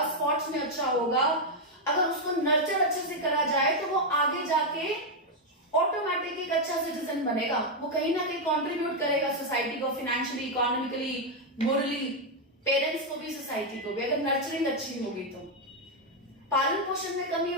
स्पोर्ट्स में अच्छा होगा. अगर उसको नर्चर अच्छे से करा जाए तो वो आगे जाके ऑटोमेटिक एक अच्छा सिटीजन बनेगा. वो कहीं ना कहीं कंट्रीब्यूट करेगा सोसाइटी को, फाइनेंशियली, इकोनॉमिकली, मोरली, पेरेंट्स को भी, सोसाइटी को भी, अगर नर्चरिंग अच्छी होगी तो. पालन पोषण में कमी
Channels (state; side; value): normal; both; correlation 0.01